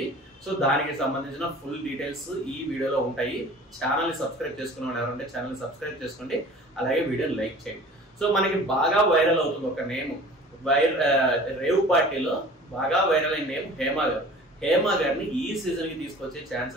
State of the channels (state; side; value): normal; both; correlation 0.44